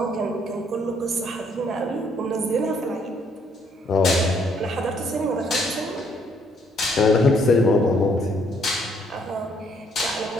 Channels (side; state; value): both; normal; correlation 0.67